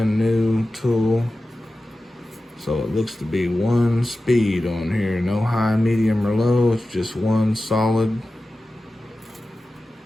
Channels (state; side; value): normal; both; correlation 0.94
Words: new tool, so it looks to be 1 speed on here. No high, medium, or low. It's just 1 solid.